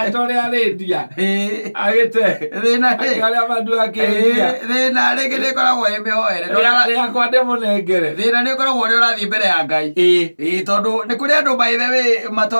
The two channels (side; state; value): both; inverted; correlation -1.00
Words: tole arendia agite thina aria mandu akiria thina ringi ni koragwo imihoere ria kwa ndemo nengere thina ni koragwo ri urathie mbere ya Ngai tondu ni kuri andu by the way